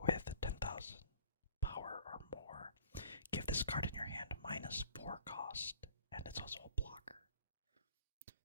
with 10,000 power or more, give this card in your hand -4 cost, and it's also a blocker.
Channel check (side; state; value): both; inverted; correlation -0.49